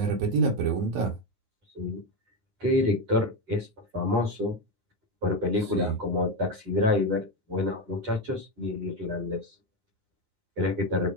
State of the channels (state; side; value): late; left; 9.6 ms